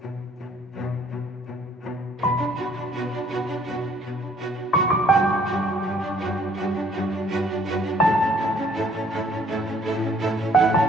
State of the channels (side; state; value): both; normal; correlation 0.61